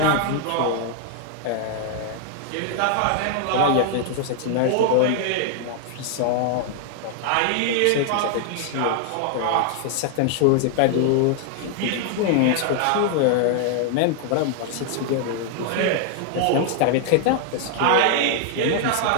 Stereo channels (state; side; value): different; both; correlation 0.00